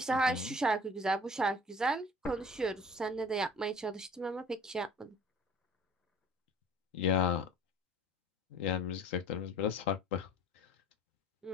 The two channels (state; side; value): normal; both; correlation 0.46